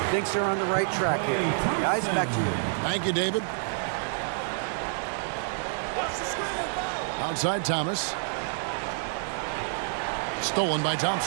thinks they're on the right track here. Guys, back to you. Thank you, David. Outside Thomas. Stolen by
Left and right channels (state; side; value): silent; left; 59 dB below the other